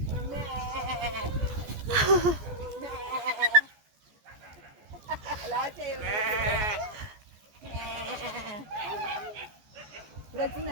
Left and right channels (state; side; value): late; left; 14 ms